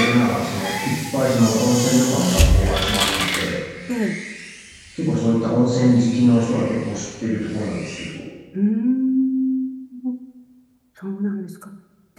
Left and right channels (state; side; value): identical; both; correlation 1.00